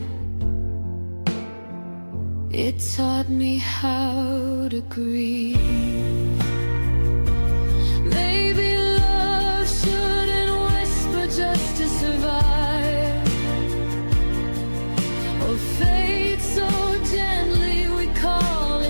It taught me how to grieve. Maybe love shouldn't whisper just to survive, or fade so gently we call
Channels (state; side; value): inverted; both; correlation -1.00